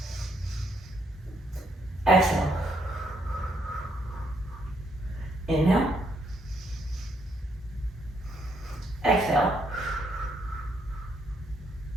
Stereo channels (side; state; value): both; normal; correlation 0.73